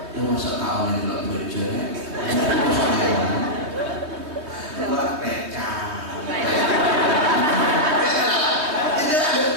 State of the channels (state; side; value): late; left; 3.2 ms